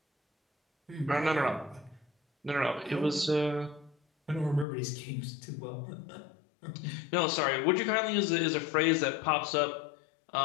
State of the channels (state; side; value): drops out; right; at 4.7 s